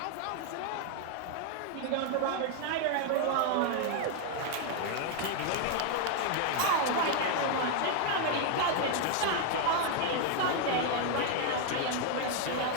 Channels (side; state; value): both; different; correlation 0.00